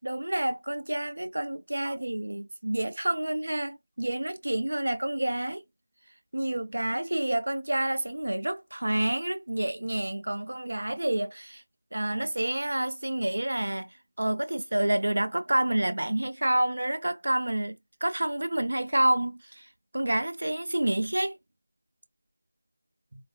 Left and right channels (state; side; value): inverted; both; correlation -1.00